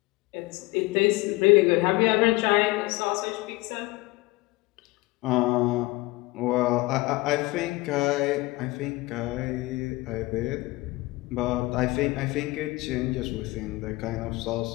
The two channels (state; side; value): quieter; right; 21.7 dB